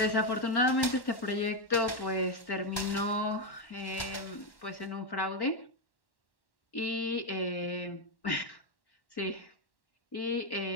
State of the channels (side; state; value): right; late; 1.1 ms